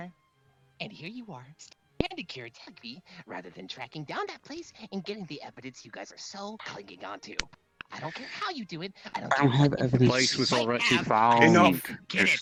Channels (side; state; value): both; identical; correlation 1.00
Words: And here you are, standing here technically, rather than tracking down that place and getting the evidence you guys are so clinging onto. I don't care how you do it. I don't have what evidence. Place was already have. found. Enough. Get it.